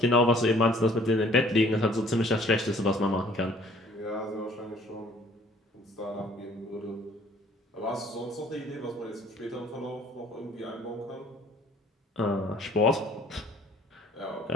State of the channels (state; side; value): normal; both; correlation 0.56